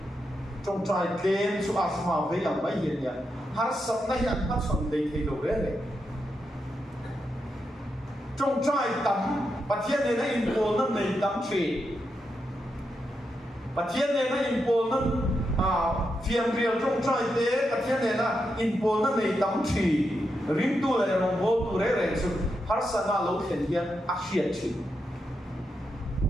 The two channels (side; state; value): both; normal; correlation 0.85